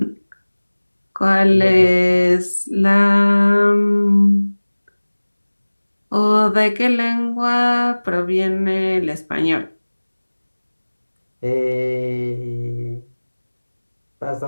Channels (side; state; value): both; inverted; correlation -1.00